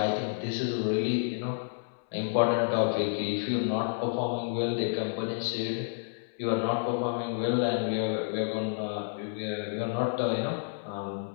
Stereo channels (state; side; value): silent; right; 58 dB below the other